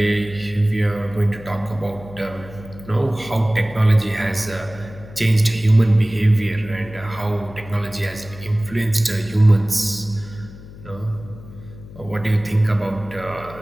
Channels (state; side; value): noise; left; hum, 17 dB below the sound